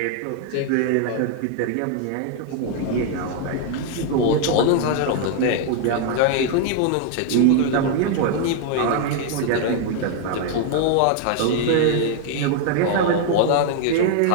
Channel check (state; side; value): different; both; correlation 0.00